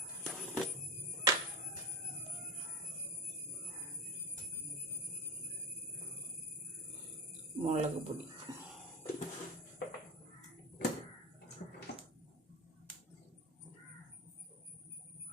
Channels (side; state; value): both; normal; correlation 0.15